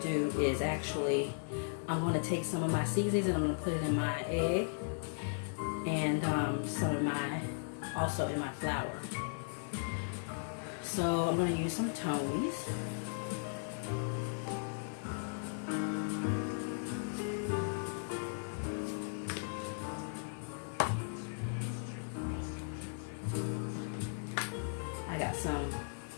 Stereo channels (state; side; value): silent; right; digital silence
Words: do is actually, I'm going to take some of my seasonings and I'm going to put it in my egg and some of my, also in my flour. So I'm going to use some Tony's. I got some